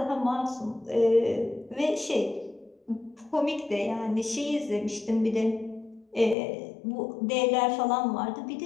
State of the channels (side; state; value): right; drops out; at 6.4 s